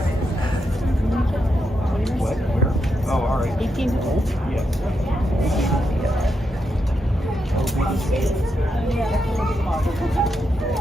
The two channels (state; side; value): normal; both; correlation 0.83